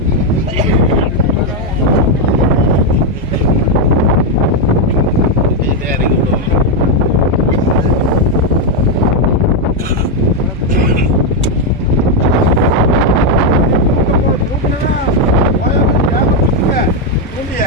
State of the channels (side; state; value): both; normal; correlation 0.03